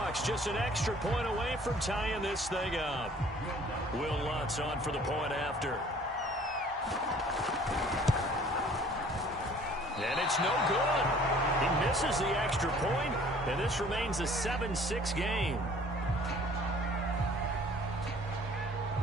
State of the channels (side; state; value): both; normal; correlation 0.53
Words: just an extra point away from tying this thing up. Will Lutz on for the point after. And it's no good. He misses the extra point, and this remains a 7-6 game.